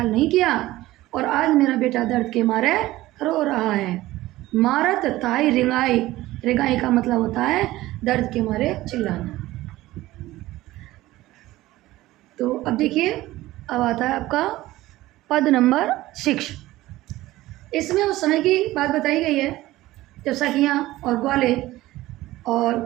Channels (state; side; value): quieter; left; 17.0 dB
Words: नहीं किया और आज मेरा बेटा दर्द के मारे रो रहा है। मारत ताई रिंगाई, रिंगाई का मतलब होता है दर्द के मारे चिल्लाना। तो अब देखिए अब आता है आपका पद नंबर 6। इसमें उस समय की बात बताई गई है जब सखियाँ और ग्वाले और